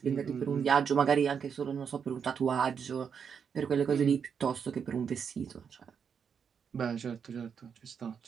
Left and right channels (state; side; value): quieter; left; 6.9 dB